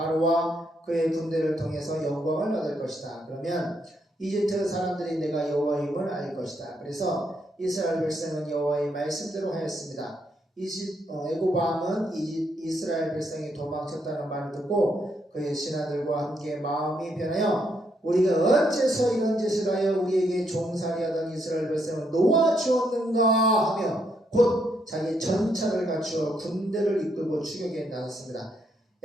그의 군대를 통해서 영광을 얻을 것이다. 그러면 이집트 사람들이 내가 여호와임을 알 것이다. 그래서 이스라엘 백성은 여호와의 말씀대로 하였습니다. 애굽 왕은 이스라엘 백성이 도망쳤다는 말을 듣고 그의 신하들과 함께 마음이 변하여 우리가 어째서 이런 짓을 하여 우리에게 종살이하던 이스라엘 백성을 놓아주었는가 하며 곧 자기 전차를 갖추어 군대를 이끌고 추격에 나섰습니다.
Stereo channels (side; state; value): both; normal; correlation 0.76